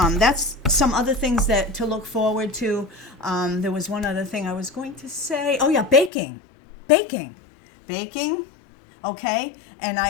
that's some other things to look forward to. There was one other thing I was going to say. Oh yeah, baking. Okay, and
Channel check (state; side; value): drops out; right; at 6.1 s